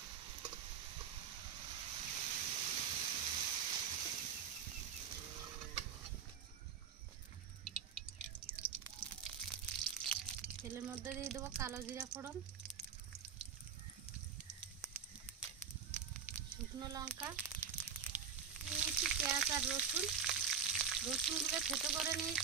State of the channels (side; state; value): left; quieter; 6.8 dB